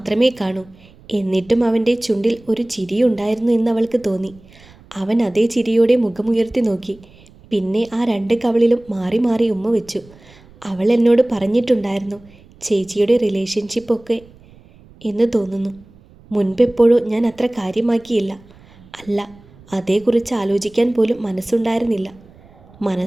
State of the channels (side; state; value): right; noise; rumble, 25 dB below the sound